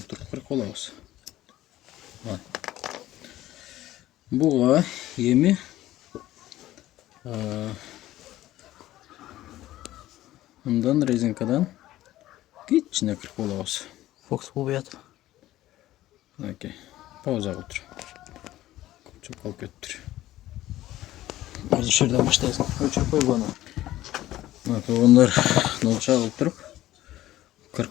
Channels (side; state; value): right; quieter; 15.0 dB